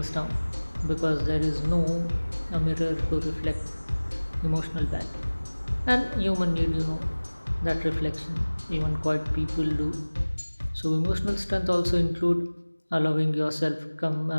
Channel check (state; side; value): inverted; both; correlation -1.00